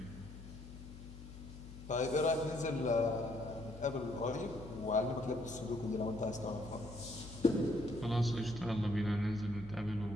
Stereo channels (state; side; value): noise; left; hum, 14 dB below the sound